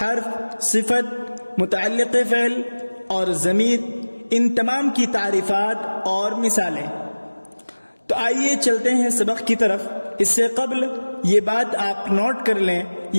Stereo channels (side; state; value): both; inverted; correlation -1.00